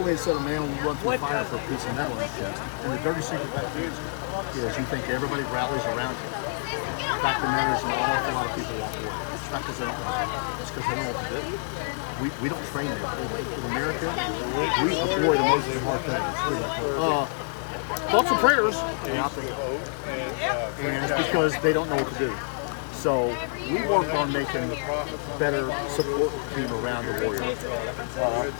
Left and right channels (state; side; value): silent; right; digital silence